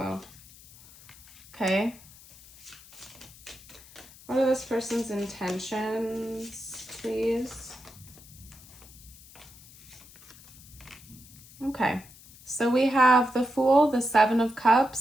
Okay. What are this person's intentions, please? Okay. So we have the Fool, the Seven of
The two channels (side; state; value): left; noise; hiss, 21 dB below the sound